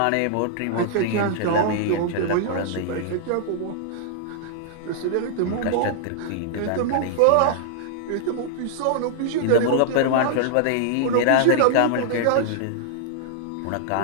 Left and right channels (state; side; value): different; both; correlation -0.01